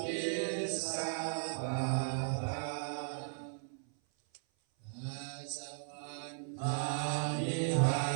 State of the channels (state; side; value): silent; left; 53 dB below the other